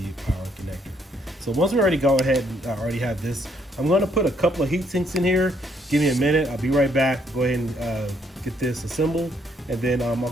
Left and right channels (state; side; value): normal; both; correlation 0.70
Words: power connector. So once we already go ahead and already have this, I'm going to put a couple of heat sinks in here. Give me a minute, I'll be right back. Go ahead and get this assembled, and then I'll